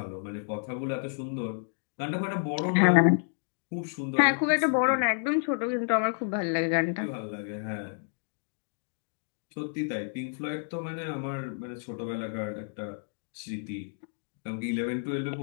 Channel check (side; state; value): right; silent; digital silence